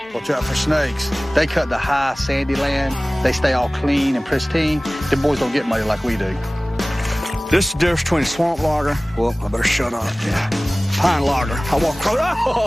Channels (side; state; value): both; normal; correlation 0.98